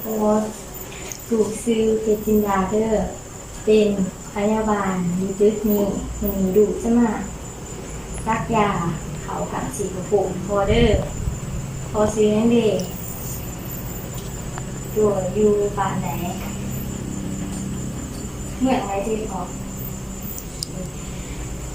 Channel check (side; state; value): both; identical; correlation 1.00